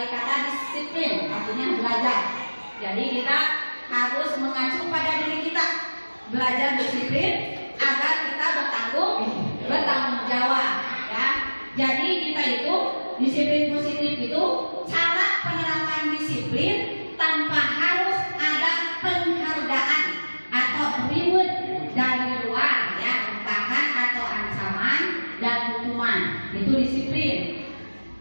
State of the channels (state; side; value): inverted; both; correlation -1.00